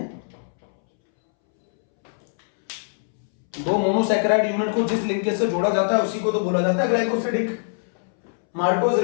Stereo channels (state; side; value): silent; right; 64 dB below the other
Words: दो मोनोसैकेराइड यूनिट को जिस लिंकेज से जोड़ा जाता है उसी को तो बोला जाता है ग्लाइकोसिडिक। माल्टोज